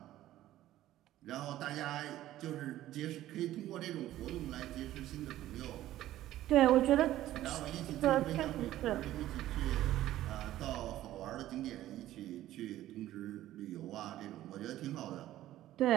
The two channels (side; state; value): left; quieter; 14.1 dB